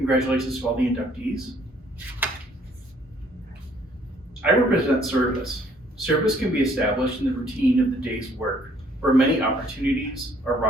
to all the inductees. I represent service. Service can be established in the routine of the day's work, where many opportunities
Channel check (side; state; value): both; normal; correlation 0.62